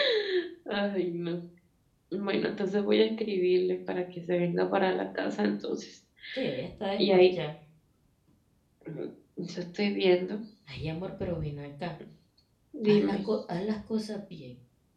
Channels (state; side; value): identical; both; correlation 1.00